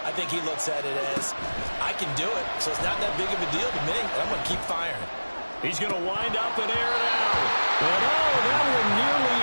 I think he looks at it as, I can do it, so it's not that big of a deal to me, and I'm going to keep firing. He's going to wind up and air it out. And that one nearly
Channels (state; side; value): inverted; both; correlation -1.00